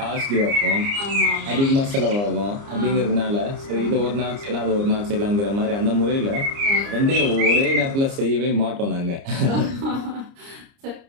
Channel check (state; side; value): late; left; 29 ms